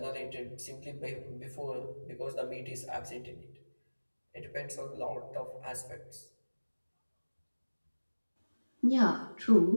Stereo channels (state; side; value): inverted; both; correlation -1.00